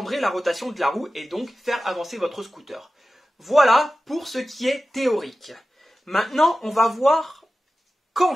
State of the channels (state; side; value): normal; both; correlation 0.95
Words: la rotation de la roue et donc faire avancer votre scooter. Voilà pour ce qui est théorique. Maintenant, on va voir quand